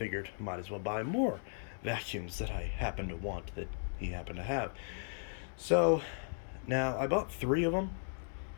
might as well buy more vacuums that I happen to want that he happened to have. So, now I bought 3 of them.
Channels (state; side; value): silent; right; digital silence